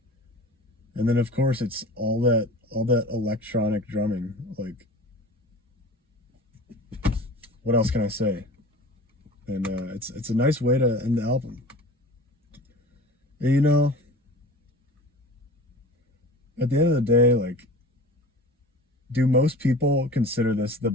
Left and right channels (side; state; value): both; normal; correlation 0.39